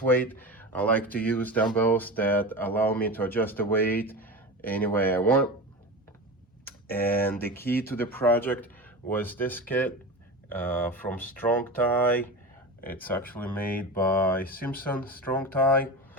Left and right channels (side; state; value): both; normal; correlation 0.27